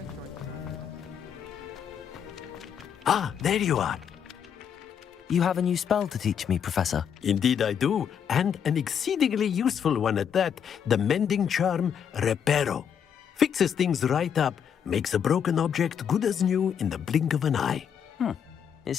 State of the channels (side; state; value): right; quieter; 8.0 dB